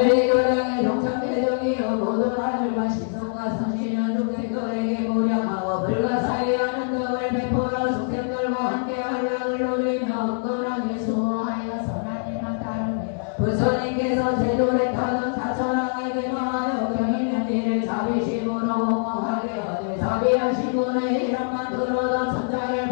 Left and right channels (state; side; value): silent; right; digital silence